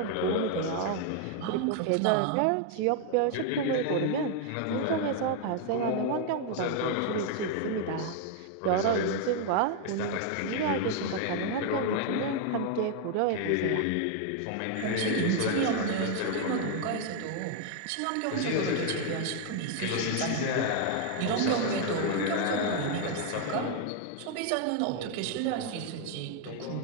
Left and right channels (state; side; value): different; both; correlation 0.00